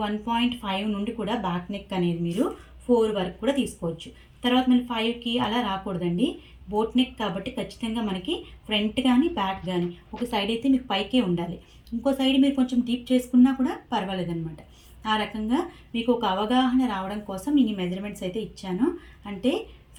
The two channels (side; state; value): both; identical; correlation 1.00